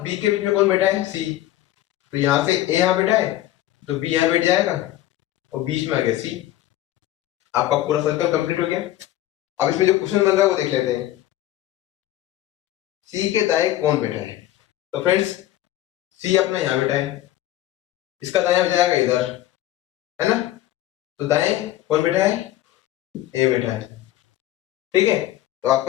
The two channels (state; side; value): quieter; right; 14.3 dB